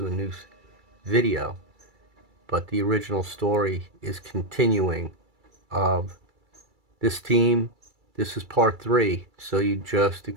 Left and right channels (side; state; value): left; late; 2.3 ms